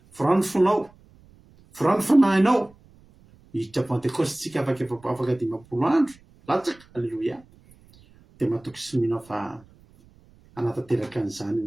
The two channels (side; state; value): right; noise; rumble, 28 dB below the sound